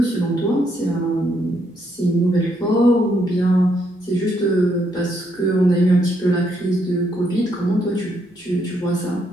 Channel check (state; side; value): normal; both; correlation 0.74